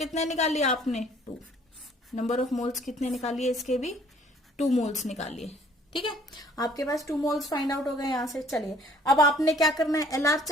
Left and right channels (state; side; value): normal; both; correlation 0.58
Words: निकाल लिया आपने 2, नंबर ऑफ मोल्स कितने निकालिए इसके भी 2 मोल्स निकालिए, ठीक है। आपके पास 2 मोल्स फाइंड आउट हो गए यहां से। चलिए अब आपने क्या करना है, एलआर